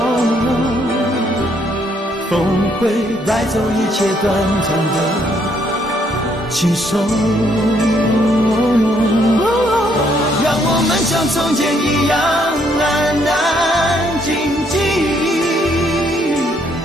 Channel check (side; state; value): both; normal; correlation 0.70